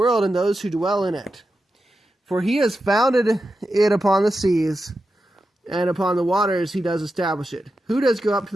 and those who dwell in it. For he has founded it upon the seas, and upon the waters he does establish it. Who does go up to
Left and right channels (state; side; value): normal; both; correlation 0.90